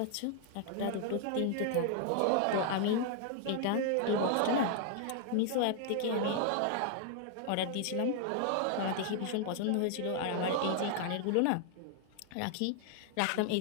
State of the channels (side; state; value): both; different; correlation 0.00